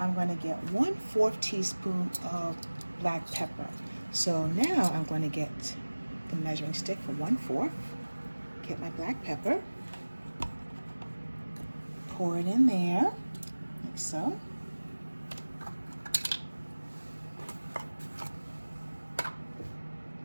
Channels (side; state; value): both; inverted; correlation -1.00